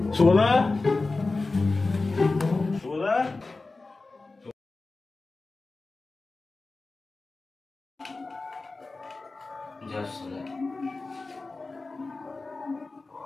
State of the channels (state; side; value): quieter; right; 3.5 dB